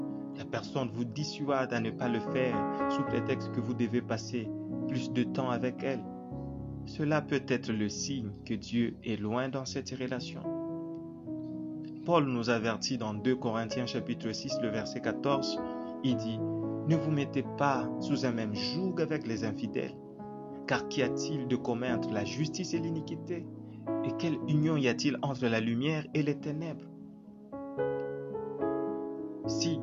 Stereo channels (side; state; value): both; identical; correlation 1.00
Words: la personne vous dissuade à ne pas le faire sous prétexte que vous devez passer plus de temps avec elle. Cela peut être le signe que Dieu est loin dans cette relation. Paul nous avertit dans 2 Corinthiens chapitre 6, le verset 14. Il dit, « Ne vous mettez pas sous un même joug avec les infidèles, car qu'y a-t-il de commun entre la justice et l'iniquité? Et quelle union y a-t-il entre la lumière et les ténèbres ?» Si,